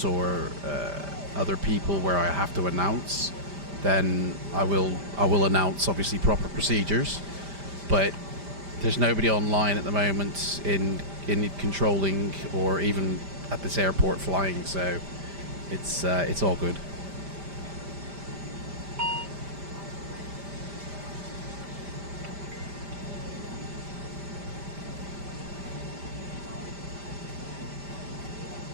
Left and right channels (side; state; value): left; late; 5.1 ms